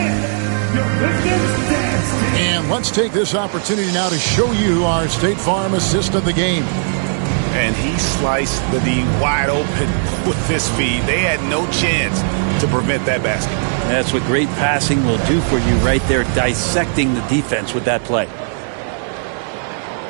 Let's take this opportunity now to show you our State Farm assist of the game. And he sliced the D wide open with this feed. They had no chance to prevent that basket. That's what great passing will do for you right there, dissecting the defense with that play.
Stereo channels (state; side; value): silent; left; digital silence